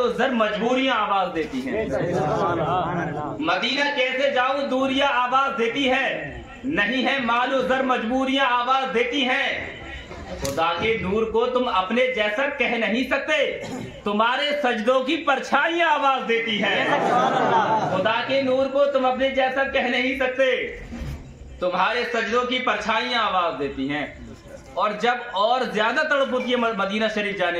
زر مجبوریاں آواز دیتی ہیں. مدینہ کیسے جاؤں دوریاں آواز دیتی ہے، نہیں ہے مال و زر مجبوریاں آواز دیتی ہیں. خدا کے نور کو تم اپنے جیسا کہہ نہیں سکتے، تمہارے سجدوں کی پرچھائیاں آواز دیتی ہیں. خدا کے نور کو تم اپنے جیسا کہہ نہیں سکتے، تمہارے سجدوں کی پرچھائیاں آواز دیتی ہیں. اور جب اور زیادہ تڑپ ہوتی ہے مدینہ شریف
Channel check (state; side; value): identical; both; correlation 1.00